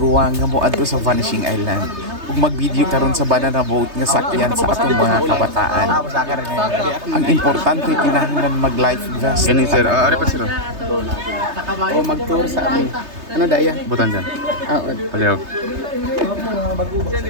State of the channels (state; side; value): late; left; 3.3 ms